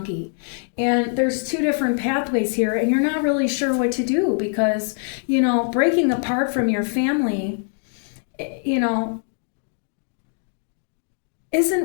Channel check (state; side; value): silent; right; 63 dB below the other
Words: And there's two different pathways here, and you're not really sure what to do because, breaking apart from your family,